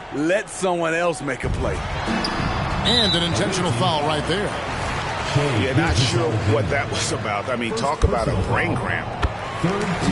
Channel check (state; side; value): identical; both; correlation 1.00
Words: Let someone else make a play. And an intentional foul right there. You're not sure what that was about. I mean, talk about a brain cramp.